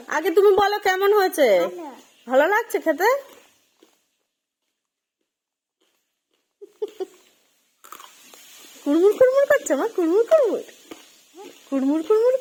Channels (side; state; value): both; identical; correlation 1.00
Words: আগে তুমি বলো কেমন হয়েছে। ভালো ভালো লাগছে খেতে? কুড়মুড় কুড়মুড় করছে মা, কুড়মুড় কুড়মুড় কুড়মুড় কুড়মুড়